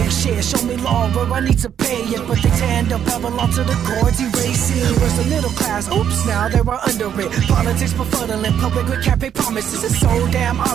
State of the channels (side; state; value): left; quieter; 9.1 dB